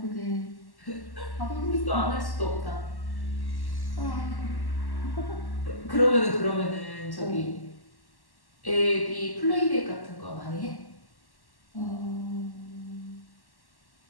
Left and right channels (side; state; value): right; late; 1.1 ms